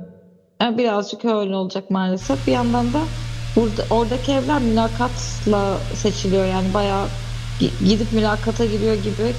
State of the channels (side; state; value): both; identical; correlation 1.00